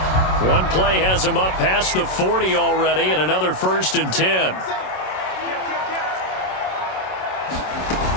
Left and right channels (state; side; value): late; right; 27 ms